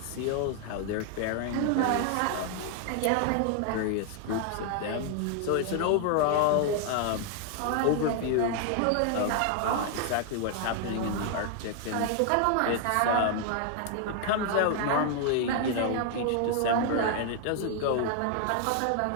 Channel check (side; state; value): both; different; correlation 0.00